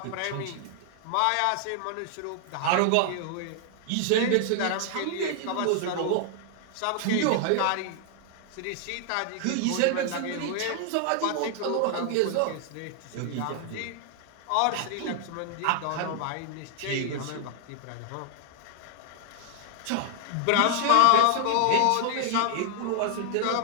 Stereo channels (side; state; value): both; different; correlation 0.00